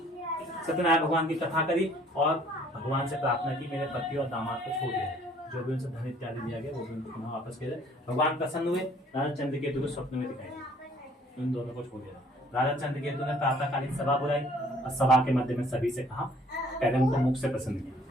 सत्यनारायण भगवान की कथा करी और भगवान से प्रार्थना की, मेरे पति और दामाद को छोड़ दिया, जो भी उनसे धन इत्यादि दिया गया वो भी उनको पुनः वापस किया जाए। भगवान प्रसन्न हुए, राजा चंद्रकेतु को स्वप्न में दिखाई, उन दोनों को छोड़ दिया। राजा चंद्रकेतु ने प्रातःकालीन सभा बुलाई और सभा के मध्य में सभी से कहा, पहले उनको मुख से प्रसन्न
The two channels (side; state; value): both; normal; correlation 0.58